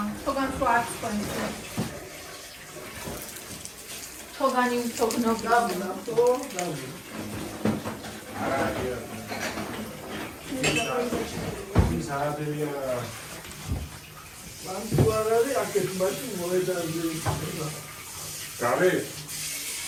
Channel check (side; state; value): both; identical; correlation 1.00